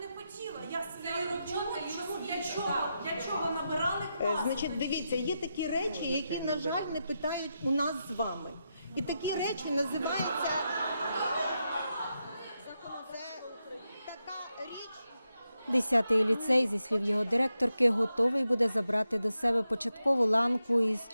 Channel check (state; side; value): inverted; both; correlation -0.86